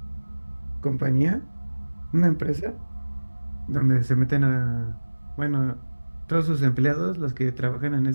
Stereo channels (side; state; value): both; inverted; correlation -1.00